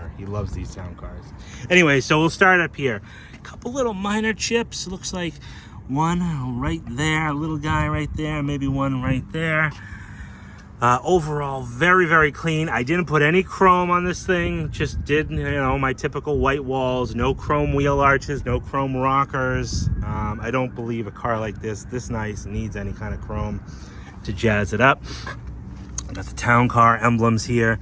He loves these town cars. Anyway, so we'll start up here. A couple little minor chips. Looks like one right there, a little guy right there, maybe one right there. Overall, very, very clean. I didn't put any chrome on this thing. Just did, you know, my typical white walls. No chrome wheel arches, no chrome rockers. I don't believe a car like this nice, needs any kind of chrome to jazz it up. Got the town car emblems here.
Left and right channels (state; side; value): identical; both; correlation 1.00